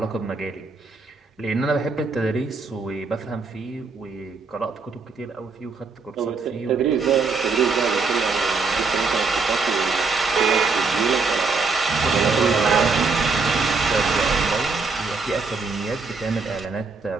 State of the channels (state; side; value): quieter; left; 4.3 dB